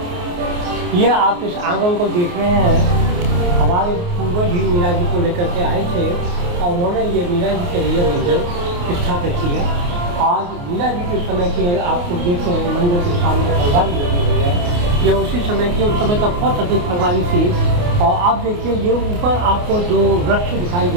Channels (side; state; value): left; late; 28 ms